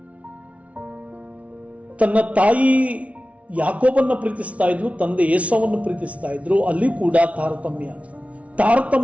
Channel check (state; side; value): late; left; 0.065 ms